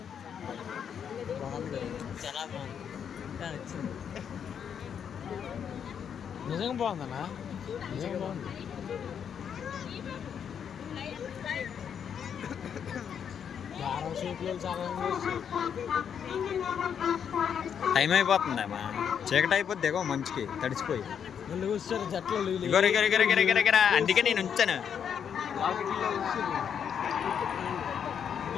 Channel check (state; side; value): quieter; right; 7.9 dB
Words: నిజంగా బాగుందన్నా నిజంగా బాగుంది. టైం అయిపోతుందమ్మా చీకటి అయిపోద్ది దిగో మంచికి తడిచిపోయి. అందుకే నేను ఉంచాను.